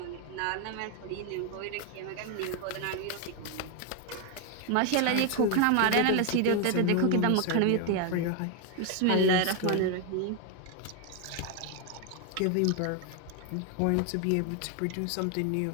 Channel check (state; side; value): different; both; correlation 0.01